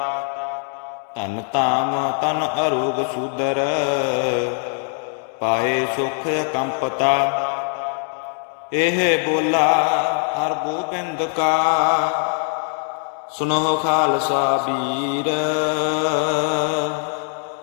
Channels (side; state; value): right; silent; 56 dB below the other